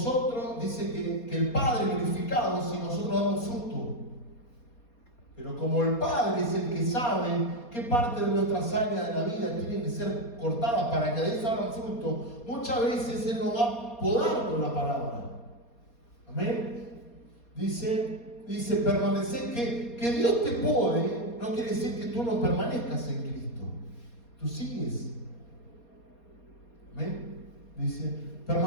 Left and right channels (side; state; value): right; late; 4.2 ms